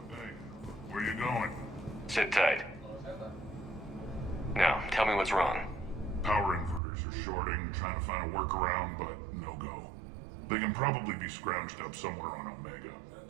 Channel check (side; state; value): left; drops out; at 6.8 s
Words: hey, where you going? Sit tight. Now, tell me what's wrong. Power inverters are shorting, trying to find a workaround, but no go. They can probably be scrounged up somewhere on Omega.